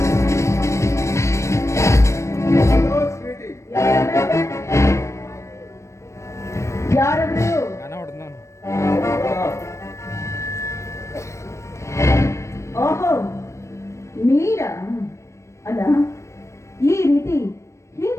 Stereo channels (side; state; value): right; late; 0.14 ms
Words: ಯಾರಾದ್ರು? ಓಹೋ, ನೀರಾ? ಅಲ್ಲ, ಈ ರೀತಿ